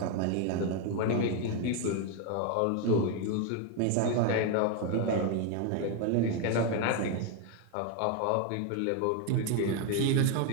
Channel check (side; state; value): both; different; correlation 0.01